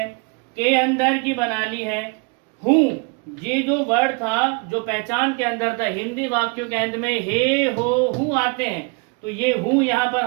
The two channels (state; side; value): quieter; left; 32.5 dB